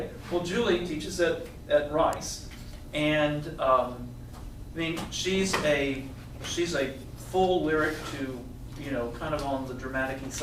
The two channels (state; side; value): identical; both; correlation 1.00